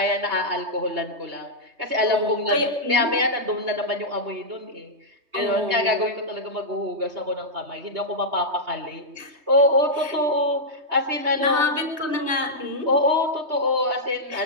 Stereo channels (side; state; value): left; late; 3.2 ms